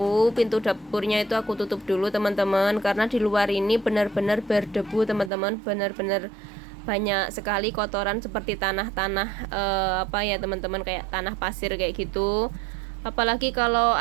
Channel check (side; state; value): left; drops out; at 5.3 s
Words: pintu dapurnya itu aku tutup dulu teman-teman, karena di luar ini benar-benar berdebu teman-teman, benar-benar banyak sekali kotoran seperti tanah-tanah ya teman-teman, kayak tanah pasir kayak gitu. Apalagi kalau